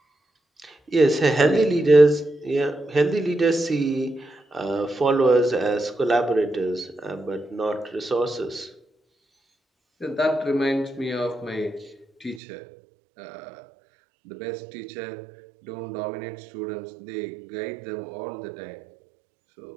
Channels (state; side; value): drops out; left; at 12.4 s